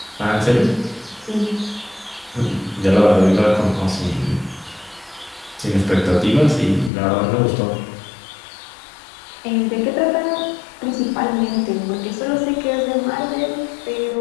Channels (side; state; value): right; drops out; at 6.9 s